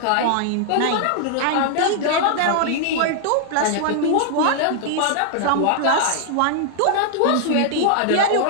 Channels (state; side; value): different; both; correlation -0.01